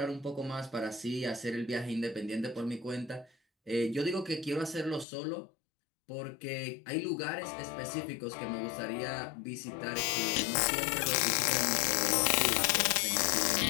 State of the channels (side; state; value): right; drops out; at 5.1 s